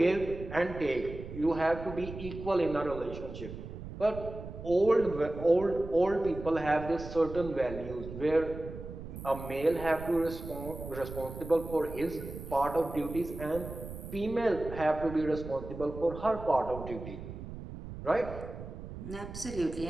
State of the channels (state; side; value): noise; right; rumble, 11 dB below the sound